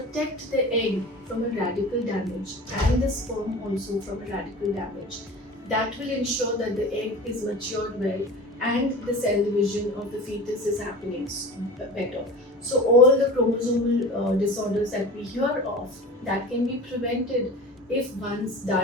the egg from a radical damage and the sperm also from a radical damage. That will ensure that the egg is matured well and the cell division of the fetus is happening better. So all the chromosomal disorders that we hear of, that can be prevented if one's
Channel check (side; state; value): both; normal; correlation 0.36